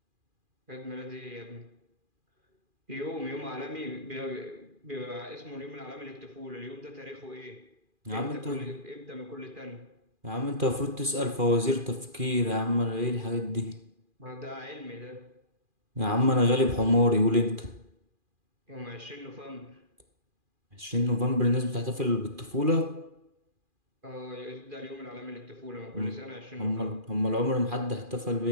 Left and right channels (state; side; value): late; left; 2.4 ms